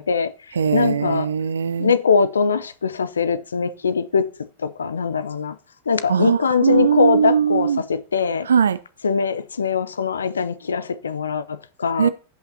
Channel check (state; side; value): inverted; both; correlation -0.70